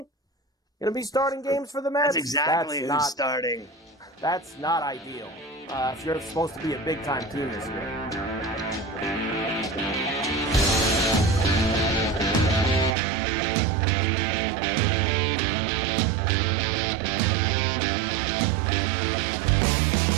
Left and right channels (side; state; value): left; drops out; at 13.0 s